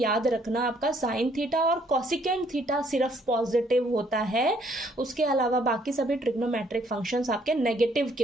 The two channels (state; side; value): normal; both; correlation 0.65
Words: रखना आपका साइन थीटा और कोसिकेंट थीटा सिर्फ पॉजिटिव होता है, उसके अलावा बाकी सभी ट्रिग्नोमेट्रिक फंक्शंस आपके नेगेटिव